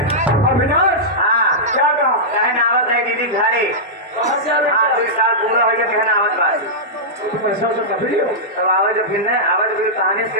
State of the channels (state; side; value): normal; both; correlation -0.12